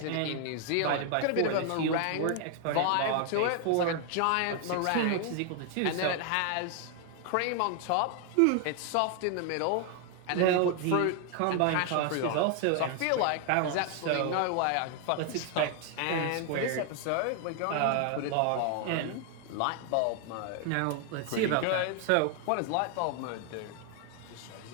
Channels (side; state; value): both; different; correlation 0.00